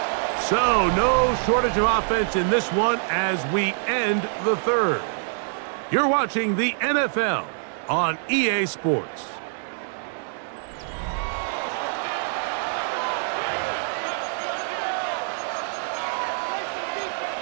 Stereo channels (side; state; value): left; silent; digital silence